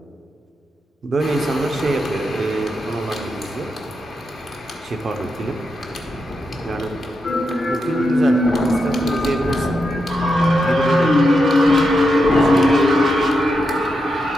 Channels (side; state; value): both; normal; correlation 0.85